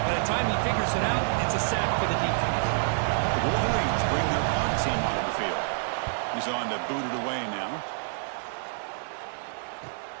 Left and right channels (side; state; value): left; silent; digital silence